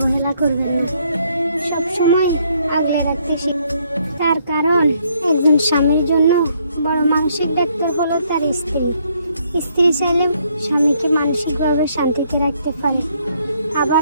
করবেন না, সবসময় আগলে রাখতে শিখুন। তার কারণ একজন স্বামীর জন্য বড় মানসিক ডাক্তার হলো তার স্ত্রী। স্ত্রী চাইলে স্বামীকে মানসিকভাবে শান্তিতে রাখতে পারে,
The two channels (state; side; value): inverted; both; correlation -0.70